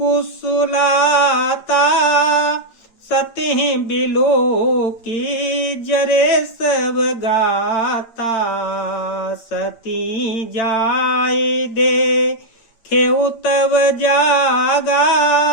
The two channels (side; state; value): right; late; 8.7 ms